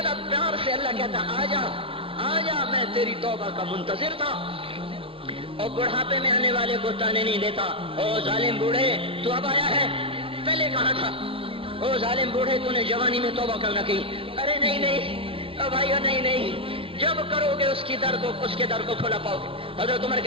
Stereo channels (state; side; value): late; left; 0.26 ms